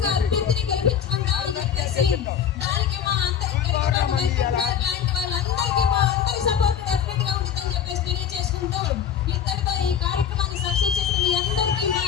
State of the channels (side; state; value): right; quieter; 8.4 dB